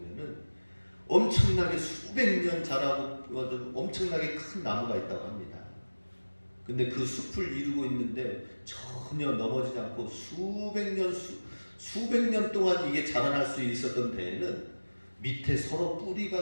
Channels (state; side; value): inverted; both; correlation -1.00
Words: 엄청나게 수백 년 자라고 엄청나게 큰 나무가 있다고 합니다. 근데 그 숲을 이루고 있는데 전혀 넘어지지 않고 수백 년 동안 이게 자라날 수 있었던 데에는 밑에 서로